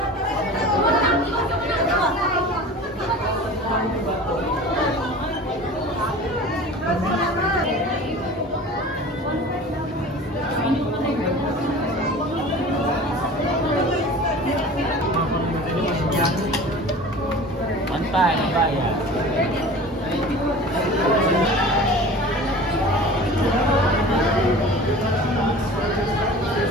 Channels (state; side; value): normal; both; correlation 0.39